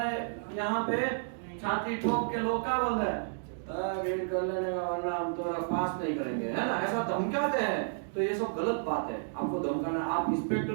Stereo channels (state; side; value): silent; left; digital silence